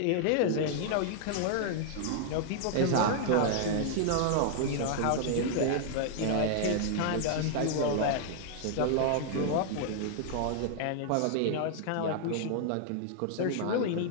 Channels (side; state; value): both; different; correlation -0.01